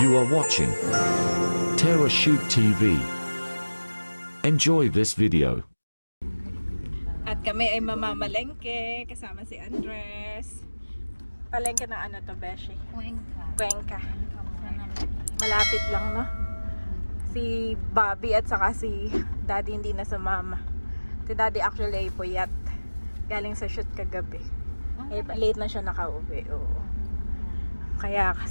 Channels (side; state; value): both; inverted; correlation -1.00